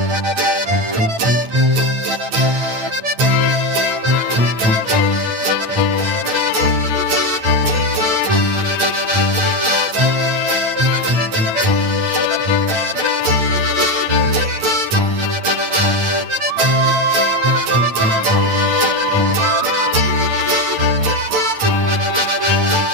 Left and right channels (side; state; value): left; late; 8.9 ms